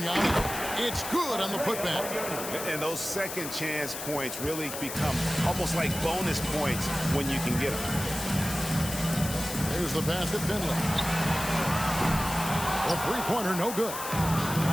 It's good on the putback. And those second chance points really become almost like bonus points when you can get them. There's the pass to Finley. The three-pointer, no good.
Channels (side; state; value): left; noise; hiss, 7 dB below the sound